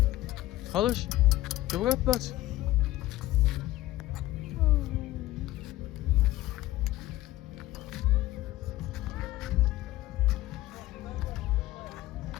Halış? Que vou para?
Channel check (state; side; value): quieter; right; 16.2 dB